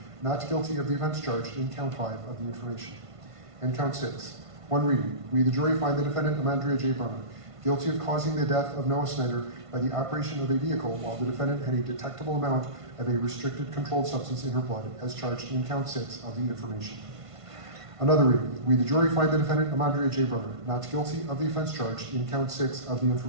not guilty of the offense charged in count 5 of the information. And count 6, one reading, we, the jury, find the defendant Amandria J. Brunner guilty of causing the death of Noah Snyder by the operation of a vehicle while the defendant had a detectable amount of a restricted controlled substance in her blood, as charged in count 6 of the information. Another reading, we, the jury, find the defendant Amandria J. Brunner not guilty of the offense charged in count 6 of the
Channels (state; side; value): late; left; 1.5 ms